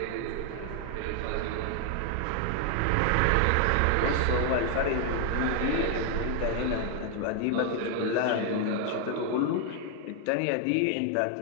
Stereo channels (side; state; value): both; different; correlation 0.00